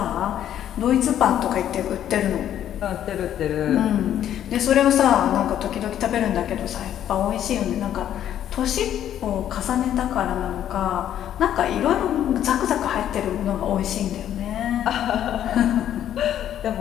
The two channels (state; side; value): quieter; right; 10.8 dB